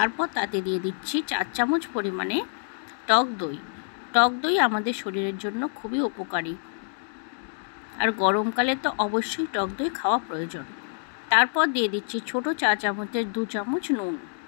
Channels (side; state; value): right; silent; digital silence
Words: তাতে দিয়ে দিচ্ছি 4 চামচ পরিমাণে টক দই। টক দই আমাদের শরীরের জন্য খুবই উপকারী, আর গরমকালে তো অবশ্যই টক দই খাওয়া প্রয়োজন। তারপর দিয়ে দিচ্ছি ছোট চা চামচের 2 চামচ নুন,